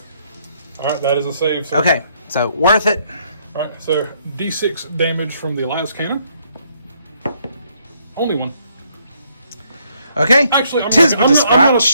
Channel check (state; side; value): inverted; both; correlation -0.70